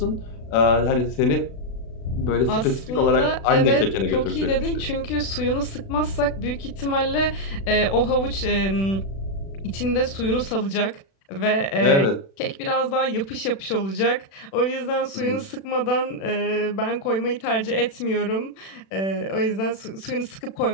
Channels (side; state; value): right; late; 36 ms